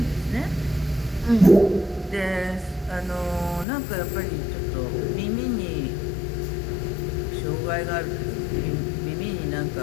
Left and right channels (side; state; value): right; drops out; at 3.7 s